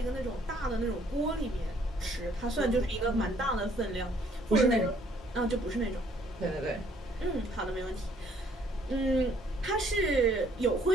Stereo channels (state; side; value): normal; both; correlation 0.62